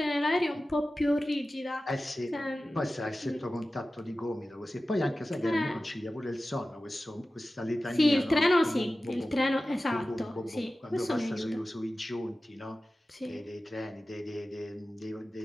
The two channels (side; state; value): both; normal; correlation 0.95